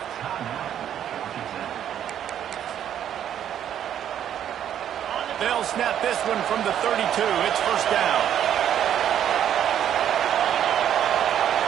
They'll snap this one from the 32. It's first down.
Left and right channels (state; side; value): quieter; left; 10.1 dB